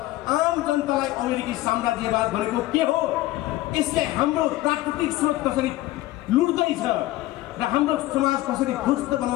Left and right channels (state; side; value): quieter; right; 16.9 dB